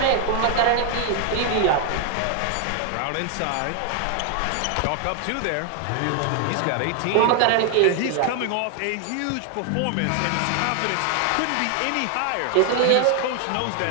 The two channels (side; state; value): both; different; correlation 0.00